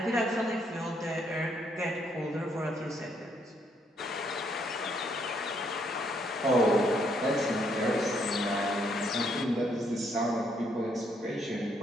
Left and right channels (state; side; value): normal; both; correlation 0.71